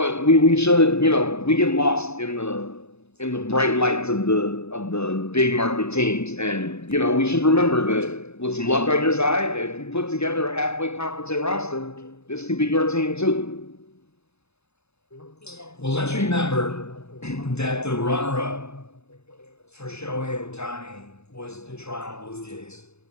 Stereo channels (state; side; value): late; right; 0.80 ms